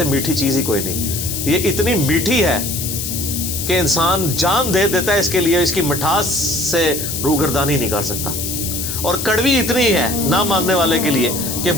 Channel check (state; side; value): noise; left; hiss, 4 dB below the sound